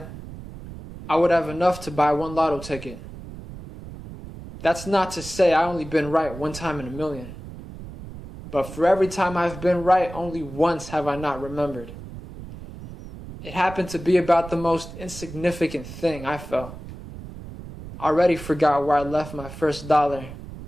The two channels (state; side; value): noise; right; rumble, 13 dB below the sound